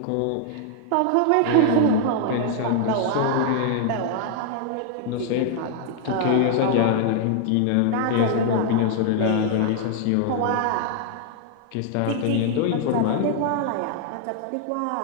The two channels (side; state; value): both; different; correlation 0.00